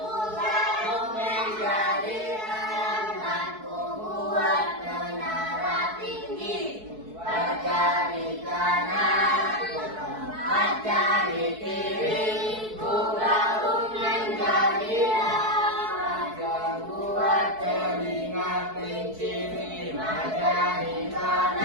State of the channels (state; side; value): late; left; 4.6 ms